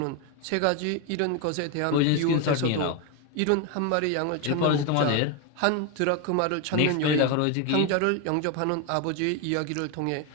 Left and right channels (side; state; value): both; different; correlation 0.02